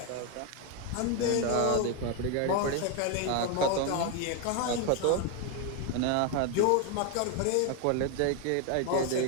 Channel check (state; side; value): different; both; correlation 0.01